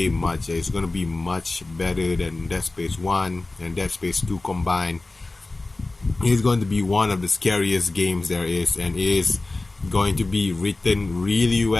much. It's going to be much better than Dead Space 1 and Dead Space 2 combined. It is going to be one of the scariest games there is, and it is going to be written really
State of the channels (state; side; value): quieter; right; 3.1 dB